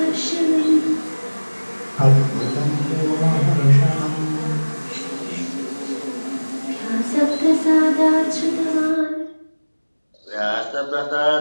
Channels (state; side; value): inverted; both; correlation -1.00